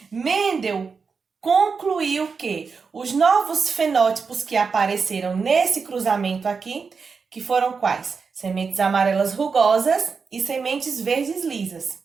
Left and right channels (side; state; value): left; quieter; 5.2 dB